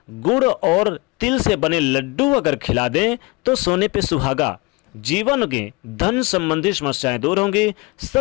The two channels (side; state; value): right; quieter; 25.2 dB